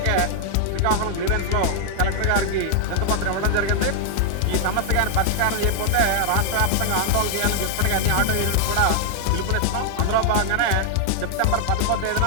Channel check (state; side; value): different; both; correlation 0.00